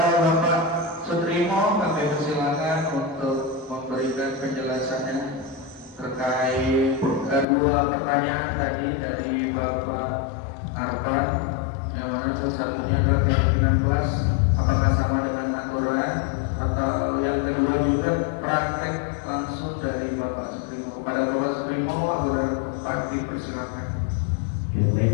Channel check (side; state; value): right; drops out; at 7.5 s